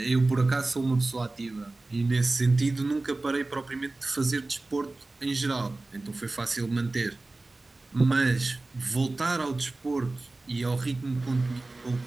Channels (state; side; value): quieter; left; 3.1 dB